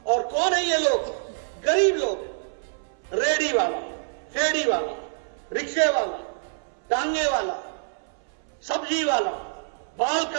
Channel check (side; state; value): left; silent; 61 dB below the other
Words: और कौन है ये लोग? गरीब लोग, रेडी वाला, फेड़ी वाला, रिक्शे वाला, टांगे वाला, सब्जी वाला, बाल